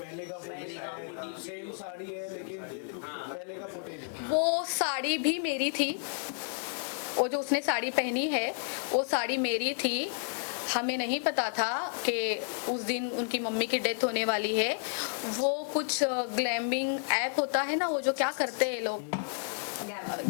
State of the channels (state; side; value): silent; right; 57 dB below the other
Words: का फुटेज, सेम साड़ी है लेकिन पहले का फुटेज है। वो साड़ी भी मेरी थी, वो जो उसने साड़ी पहनी है वो साड़ी मेरी थी। हमें नहीं पता था कि उस दिन उनकी मम्मी की डेथ होने वाली है। वो कुछ ग्लैमिंग ऐप होता है ना, वो जो क्या करते हैं लोग,